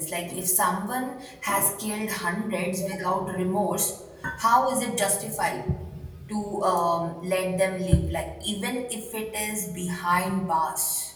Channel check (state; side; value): identical; both; correlation 1.00